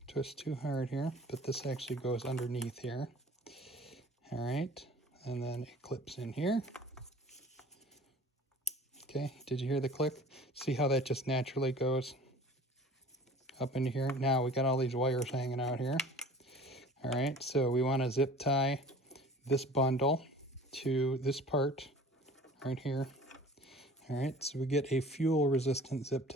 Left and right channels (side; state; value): both; normal; correlation 0.45